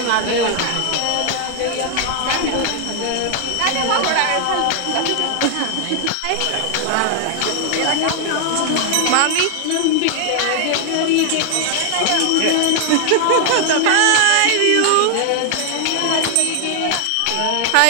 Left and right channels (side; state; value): both; different; correlation 0.00